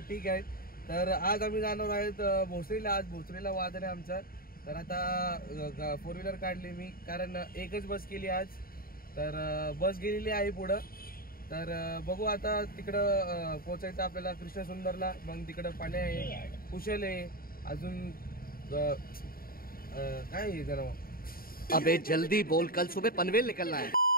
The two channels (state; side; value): late; right; 0.43 ms